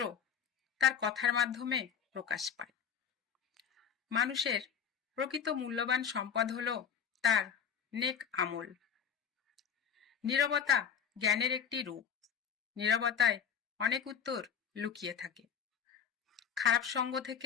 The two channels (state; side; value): quieter; right; 7.6 dB